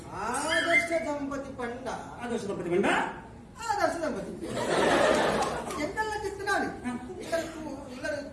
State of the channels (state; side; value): identical; both; correlation 1.00